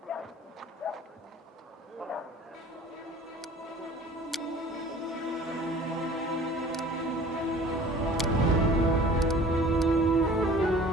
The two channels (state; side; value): normal; both; correlation 0.47